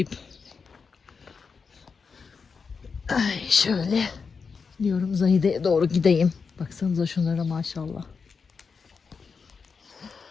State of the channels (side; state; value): right; quieter; 5.3 dB